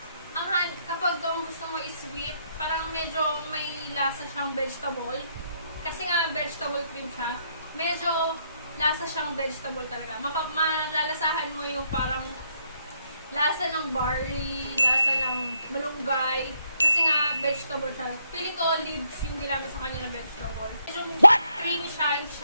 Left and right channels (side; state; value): both; inverted; correlation -0.74